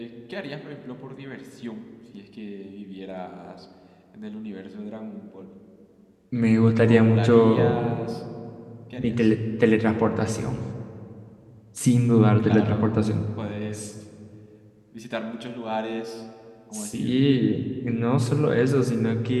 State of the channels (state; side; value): identical; both; correlation 1.00